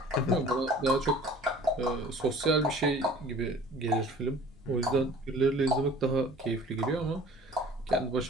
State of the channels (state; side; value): normal; both; correlation 0.47